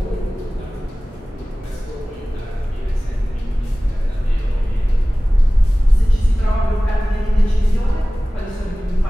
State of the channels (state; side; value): normal; both; correlation 0.98